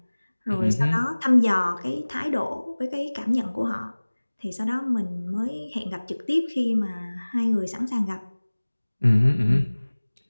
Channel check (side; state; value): both; inverted; correlation -1.00